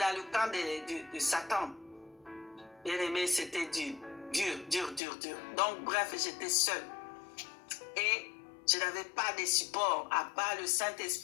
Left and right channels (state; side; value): drops out; right; at 5.0 s